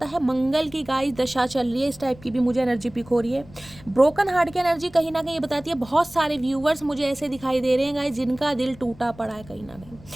है। मंगल की गाइस दशा चल रही है, इस टाइप की भी मुझे एनर्जी पिक हो रही है। ब्रोकन हार्ट की एनर्जी कहीं ना कहीं ये बताती है, बहुत सारे व्यूवर्स मुझे ऐसे दिखाई दे रहे हैं गाइस, जिनका दिल टूटा पड़ा है कहीं ना कहीं,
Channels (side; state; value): left; noise; rumble, 21 dB below the sound